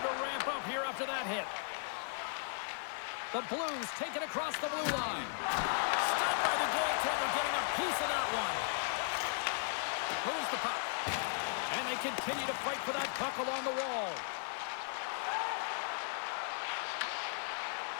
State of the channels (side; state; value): right; silent; digital silence